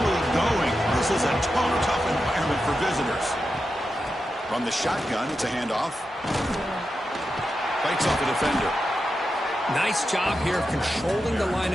going. This is a tough environment for visitors. From the shotgun, it's a handoff. Fights off a defender. Nice job here of controlling the line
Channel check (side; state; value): both; normal; correlation 0.89